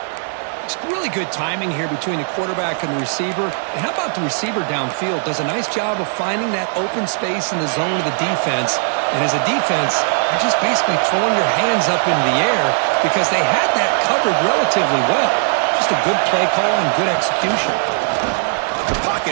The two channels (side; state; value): left; silent; 58 dB below the other